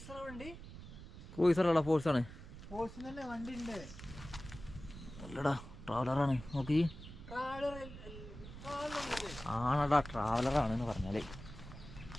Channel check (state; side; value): noise; right; rumble, 13 dB below the sound